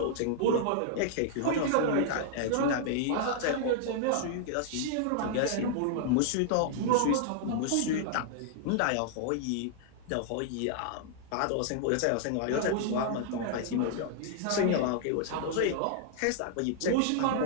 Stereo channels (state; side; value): different; both; correlation -0.01